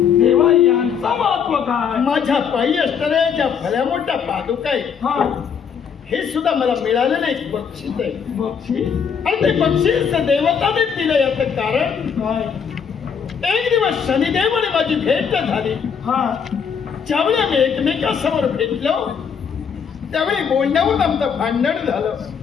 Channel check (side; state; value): right; quieter; 6.9 dB